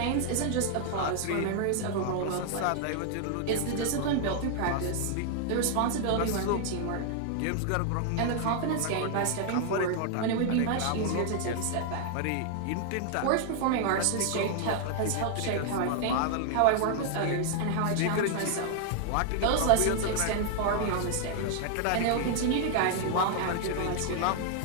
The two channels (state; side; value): different; both; correlation 0.00